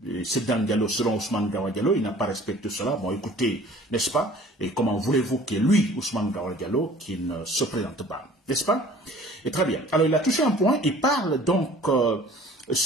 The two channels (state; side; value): normal; both; correlation 0.49